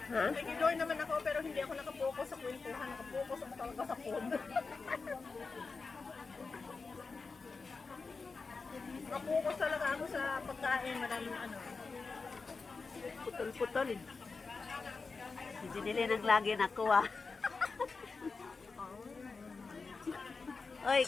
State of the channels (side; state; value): right; quieter; 4.4 dB